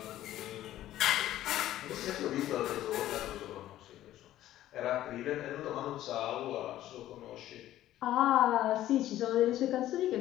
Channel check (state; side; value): quieter; right; 13.6 dB